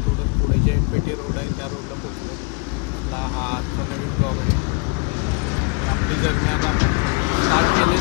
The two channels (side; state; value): right; quieter; 31.3 dB